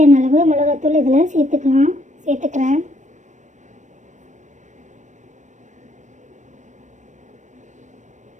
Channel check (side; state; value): left; late; 0.35 ms